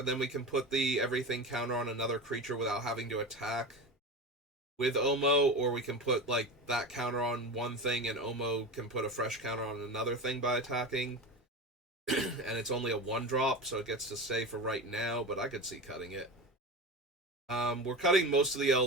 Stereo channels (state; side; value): normal; both; correlation 0.26